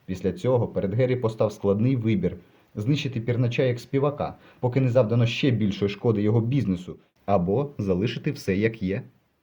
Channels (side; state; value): both; identical; correlation 1.00